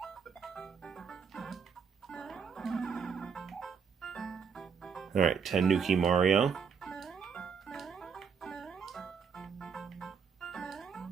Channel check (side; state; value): left; quieter; 6.3 dB